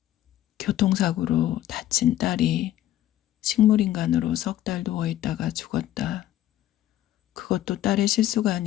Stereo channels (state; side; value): quieter; right; 13.0 dB